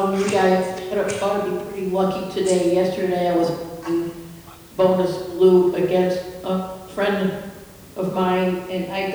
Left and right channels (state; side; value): identical; both; correlation 1.00